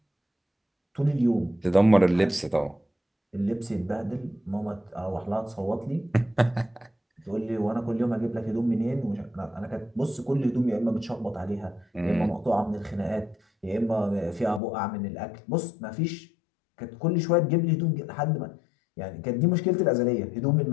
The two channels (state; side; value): drops out; right; at 14.6 s